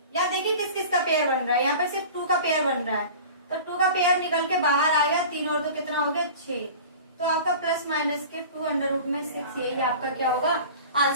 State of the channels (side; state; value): both; inverted; correlation -0.38